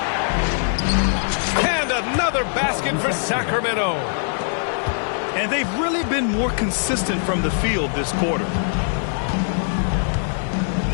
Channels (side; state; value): right; silent; 64 dB below the other